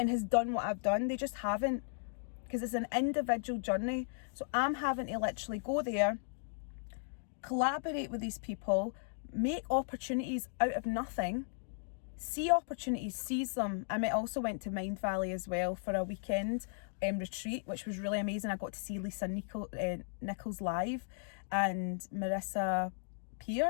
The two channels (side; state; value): right; silent; digital silence